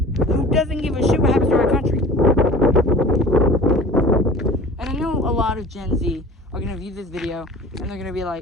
who doesn't give a shit what happens to our country. And I know a lot of Gen Z are going to view this video and they're going to be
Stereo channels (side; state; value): both; normal; correlation 0.42